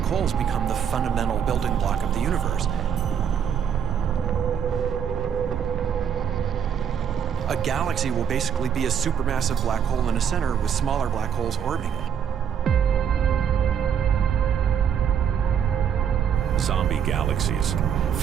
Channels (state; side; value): quieter; left; 8.2 dB